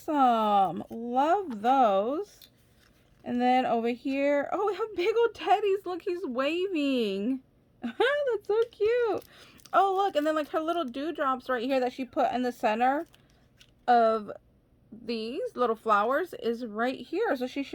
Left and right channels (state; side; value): identical; both; correlation 1.00